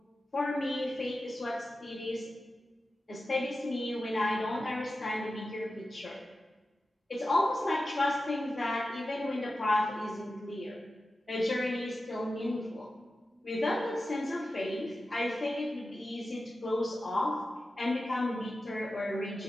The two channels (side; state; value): both; normal; correlation 0.93